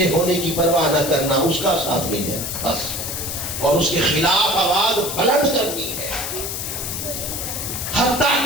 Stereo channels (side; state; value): left; noise; hiss, 4 dB below the sound